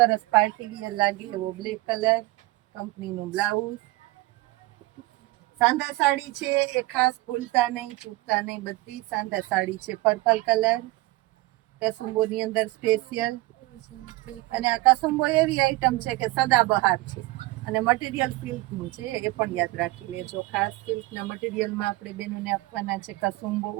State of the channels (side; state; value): left; quieter; 20.3 dB